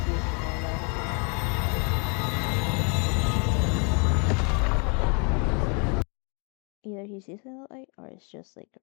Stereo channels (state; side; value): quieter; right; 36.0 dB